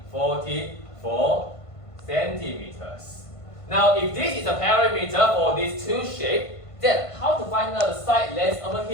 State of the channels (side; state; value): right; late; 1.5 ms